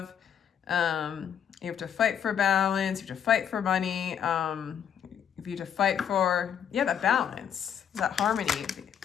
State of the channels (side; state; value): right; quieter; 8.6 dB